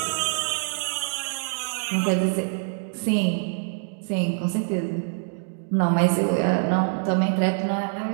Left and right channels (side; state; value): left; silent; digital silence